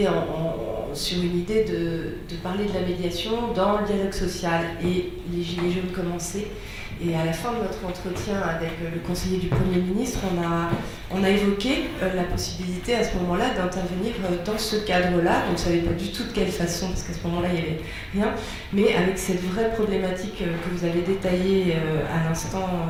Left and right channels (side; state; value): both; identical; correlation 1.00